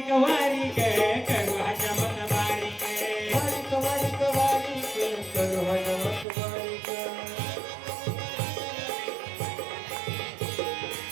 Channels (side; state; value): left; drops out; at 6.2 s